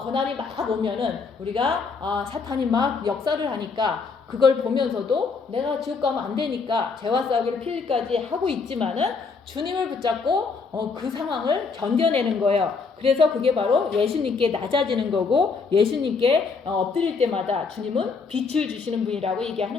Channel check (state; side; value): quieter; right; 4.8 dB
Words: 고난이 막 오면은 우리가 사탄이 막 역사를 하니까 그걸 보면서도 내가 지옥 가면 안 되니까 죄와 싸우기를 필리까지 하고 있지만은 주님을 붙잡고 그 상황을 견뎌내는 거예요. 그래서 그게 바로 예수님께 낮아지는 거고 예수님께 엎드릴 때마다 주님은 빛을 주시는 분이라고